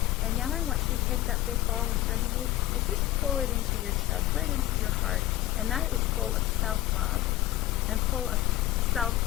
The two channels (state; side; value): quieter; right; 14.7 dB